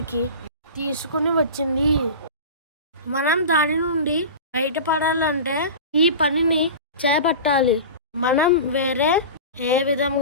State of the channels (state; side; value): inverted; both; correlation -0.32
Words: తీసుకుని వచ్చింది. మనం దాని నుండి బయటపడాలంటే ఈ పనిని చేపట్టాలి. మనం వేరే ఏ